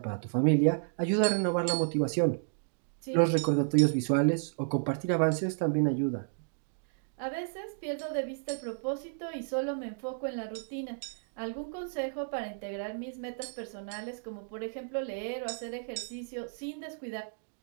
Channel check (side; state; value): left; silent; digital silence